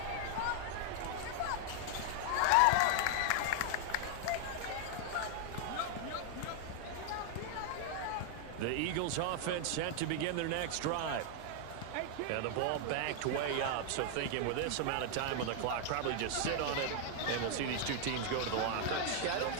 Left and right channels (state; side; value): different; both; correlation 0.00